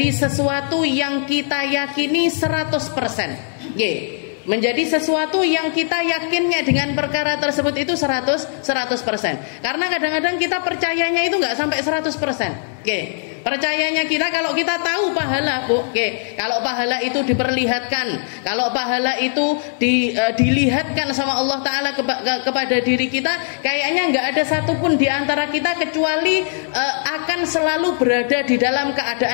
sesuatu yang kita yakini 100%. Menjadi sesuatu yang kita yakinnya dengan perkara tersebut itu 100%. Karena kadang-kadang kita percayanya itu nggak sampai 100%. Percayanya kita kalau kita tahu pahala, Bu. Kalau pahala itu diperlihatkan, kalau pahala itu dilihatkan sama Allah Ta'ala kepada diri kita, kayaknya nggak ada satupun di antara kita kecuali akan selalu berada di dalam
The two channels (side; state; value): right; silent; digital silence